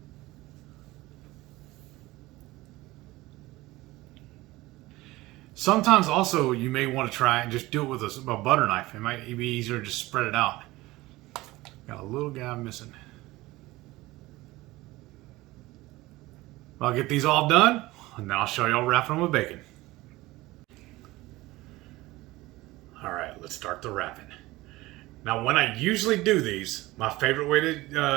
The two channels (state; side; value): quieter; left; 19.3 dB